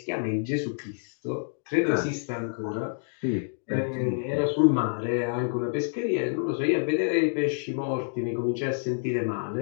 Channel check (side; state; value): right; silent; digital silence